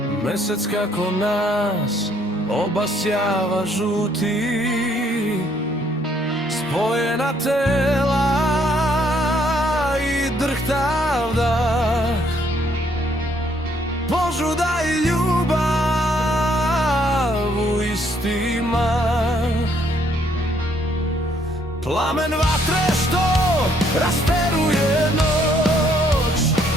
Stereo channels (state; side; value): normal; both; correlation 0.68